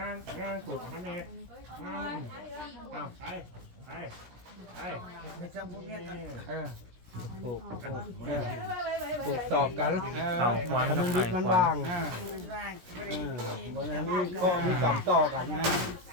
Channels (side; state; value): left; late; 17 ms